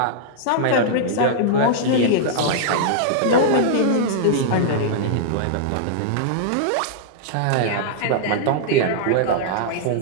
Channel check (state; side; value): different; both; correlation -0.01